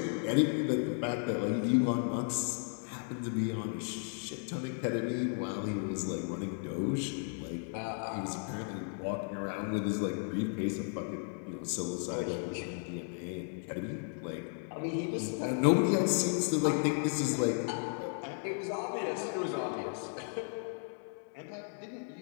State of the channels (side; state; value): right; silent; 55 dB below the other